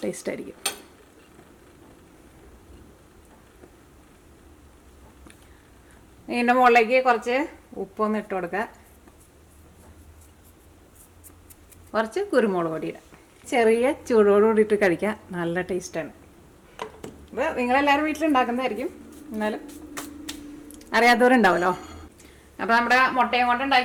ടേസ്റ്റ് ആയിരിക്കും. ഇതിൻ്റെ മുകളിലേക്ക് കുറച്ച് ഉപ്പൊന്ന് ഇട്ട് കൊടുക്കുക. കുറച്ച് കുരുമുളക് പൊടി ഇടാം. ചെറിയ ചൂടോട് കൂടിയിട്ട് കഴിക്കാൻ നല്ല ടേസ്റ്റാണ്. ഇത് നിങ്ങളെല്ലാവരും വീട്ടിലുണ്ടാക്കുന്നതായിരിക്കും, എന്നാലും അറിയാത്തവരുണ്ടാവുമല്ലോ. അപ്പോൾ നമ്മുടെ മുട്ടയും കൊണ്ട്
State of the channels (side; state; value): both; identical; correlation 1.00